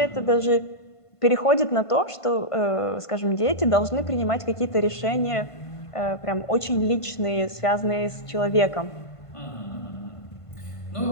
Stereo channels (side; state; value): right; late; 1.5 ms